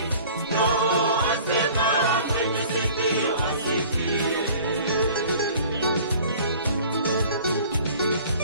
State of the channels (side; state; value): both; inverted; correlation -0.47